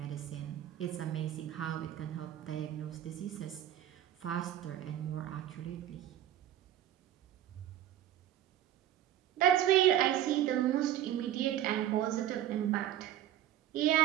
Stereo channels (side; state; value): left; quieter; 12.0 dB